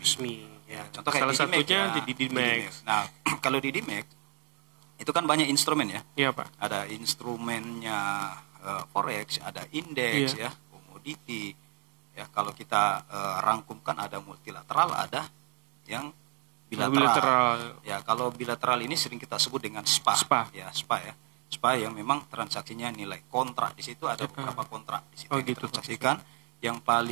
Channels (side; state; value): left; quieter; 33.1 dB